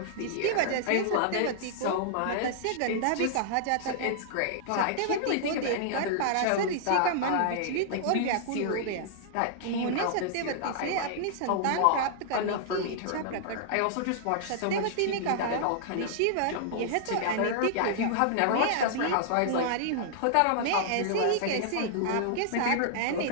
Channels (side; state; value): both; different; correlation -0.01